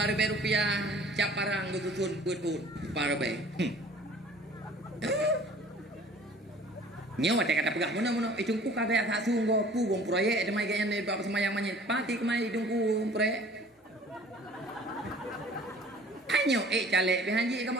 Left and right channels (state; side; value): normal; both; correlation 0.50